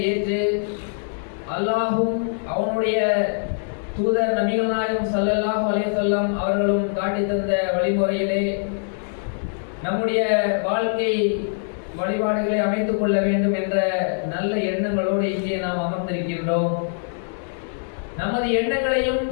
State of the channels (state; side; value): silent; right; digital silence